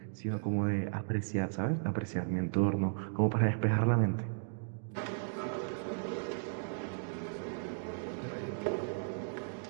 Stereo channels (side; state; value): left; silent; digital silence